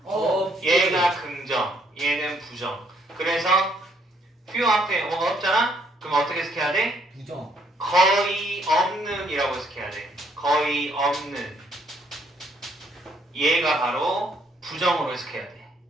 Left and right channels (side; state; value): both; normal; correlation 0.69